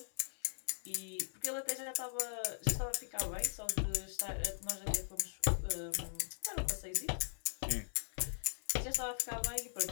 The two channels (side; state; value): right; silent; digital silence